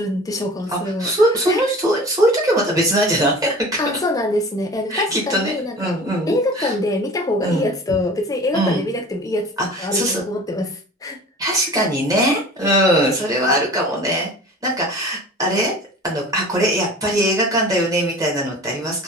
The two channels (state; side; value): normal; both; correlation 0.41